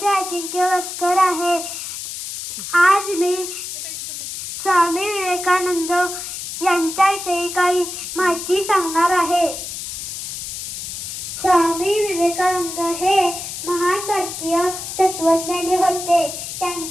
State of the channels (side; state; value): left; noise; hiss, 7 dB below the sound